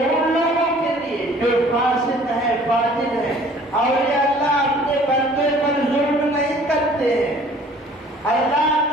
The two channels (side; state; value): both; normal; correlation 0.52